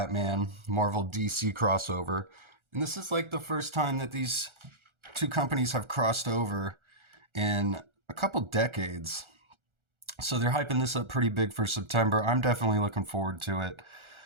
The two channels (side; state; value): left; late; 1.4 ms